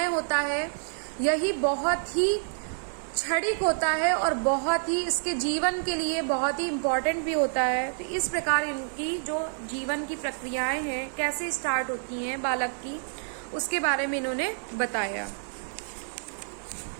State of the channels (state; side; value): silent; left; digital silence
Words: होता है यही बहुत ही क्षणिक होता है और बहुत ही इसके जीवन के लिए बहुत ही इम्पोर्टेंट भी होता है। तो इस प्रकार इनकी जो जीवन की प्रक्रियाएं हैं, कैसे स्टार्ट होती हैं बालक की, उसके बारे में इन्होंने बताया।